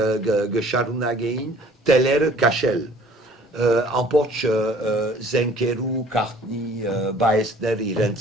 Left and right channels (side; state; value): both; normal; correlation 0.52